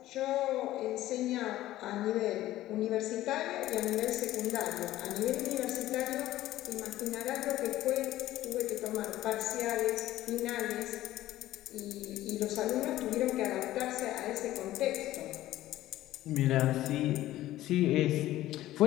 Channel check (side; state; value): right; quieter; 14.9 dB